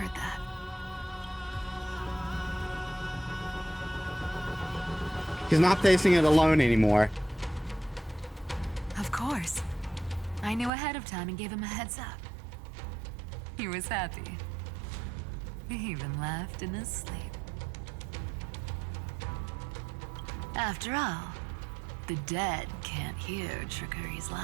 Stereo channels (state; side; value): drops out; left; at 10.7 s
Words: that. He's not facing it alone anymore. Of course. I knew ahead of time and gave him a heads up. He was happy. He even laughed in his sleep. After all, the dead can't hear Trickery's